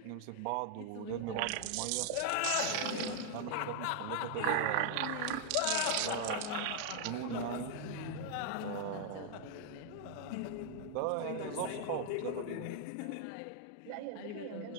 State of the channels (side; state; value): both; different; correlation 0.00